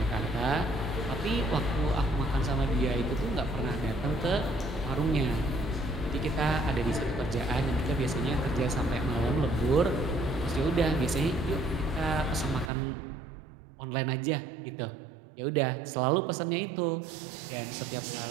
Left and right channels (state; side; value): drops out; left; at 12.7 s